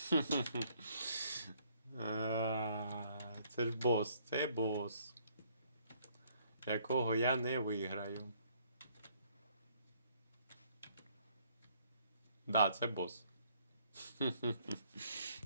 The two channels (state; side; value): inverted; both; correlation -0.64